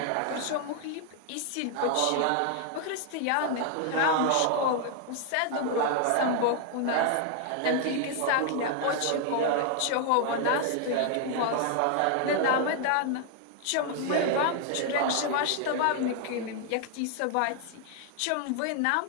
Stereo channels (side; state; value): both; different; correlation 0.00